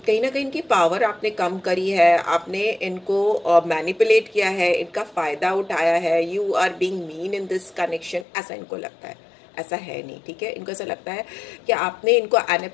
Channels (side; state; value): right; drops out; at 8.2 s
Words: ना कहीं इनकी पावर आपने कम करी है, आपने इनको मैनिपुलेट किया है, इनका फायदा उठाया है। You are being mean in this connection, ऐसा इनको लगता है। ऐसा है नहीं, ठीक है। इनको ऐसा लगता है कि आपने इनको